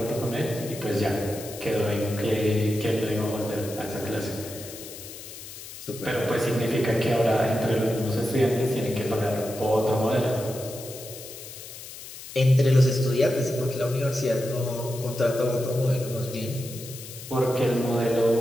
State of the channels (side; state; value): left; noise; hiss, 13 dB below the sound